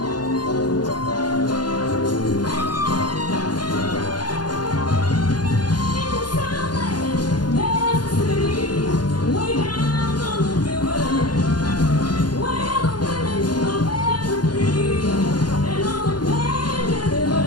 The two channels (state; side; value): late; right; 0.70 ms